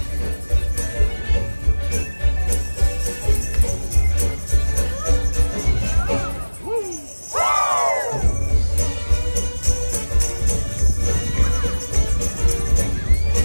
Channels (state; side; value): inverted; both; correlation -1.00